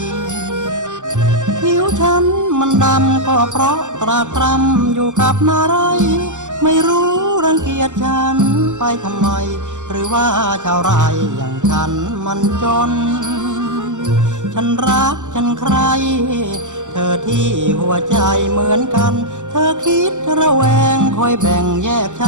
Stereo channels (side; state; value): left; late; 0.85 ms